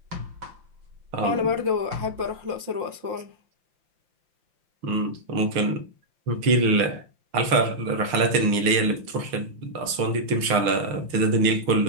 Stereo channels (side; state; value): left; late; 5.8 ms